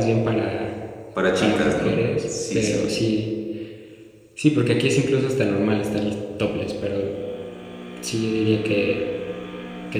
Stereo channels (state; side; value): identical; both; correlation 1.00